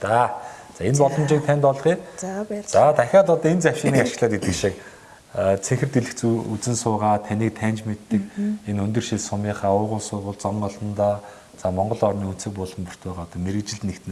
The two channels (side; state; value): both; identical; correlation 1.00